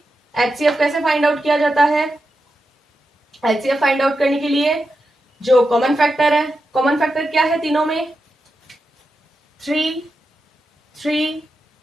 एचसीएफ कैसे फाइंड आउट किया जाता है, एचसीएफ फाइंड आउट करने के लिए जो कॉमन फैक्टर है, कॉमन फैक्टर क्या है तीनों में? 3 3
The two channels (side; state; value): both; normal; correlation 0.88